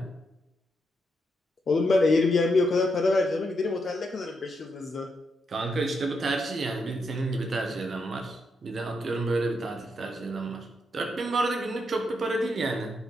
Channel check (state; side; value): normal; both; correlation 0.81